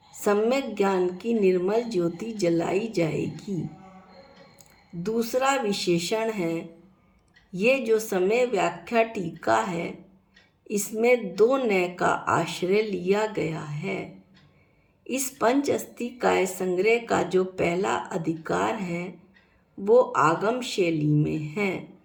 सम्यक ज्ञान की निर्मल ज्योति जलाई जाएगी। दूसरा विशेषण है, ये जो समय व्याख्या टीका है इसमें दो नय का आश्रय लिया गया है। इस पंच अस्थि काय संग्रह का जो पहला अधिकार है वो आगम शैली में है।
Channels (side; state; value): both; identical; correlation 1.00